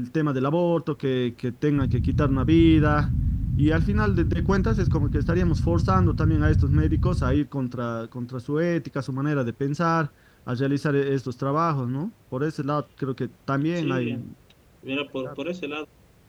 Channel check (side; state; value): both; identical; correlation 1.00